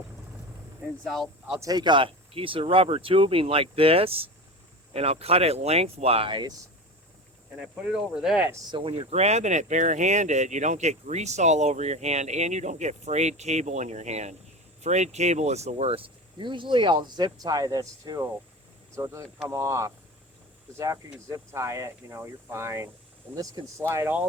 Is I'll take a piece of rubber tubing like this, and I'll cut it lengthwise, and I put it over this, so when you're grabbing it barehanded, you don't get grease all over your hand, and you don't get frayed cable in your hand. Frayed cable is the worst. Usually I'll zip tie this too, so it doesn't come off, because after you zip tie it, you know, you're fine. And this can slide all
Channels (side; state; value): both; normal; correlation 0.29